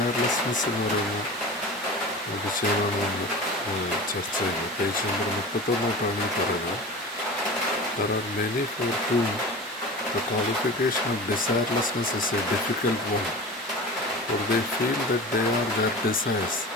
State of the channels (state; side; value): normal; both; correlation 0.33